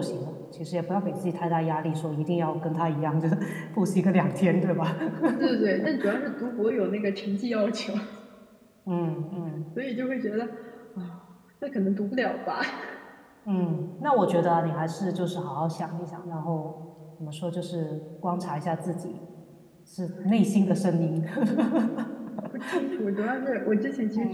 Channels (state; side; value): identical; both; correlation 1.00